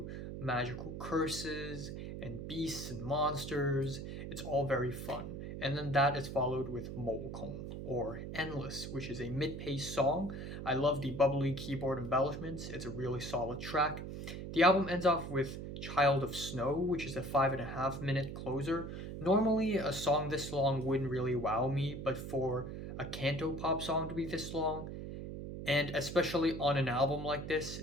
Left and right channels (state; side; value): noise; right; hum, 7 dB below the sound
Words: magical curses and beasts and monsters. It's all very fun. And then that is followed with Mo Kong, or Endless, which is a mid-paced song. I love the bubbly keyboard embellishments. It's a really solid track. The album ends off with Child of Snow, which is a 5.5-minute closer. Normally, a song this long wouldn't really wow me, but for a cantopop song to be this long, and especially on an album like this,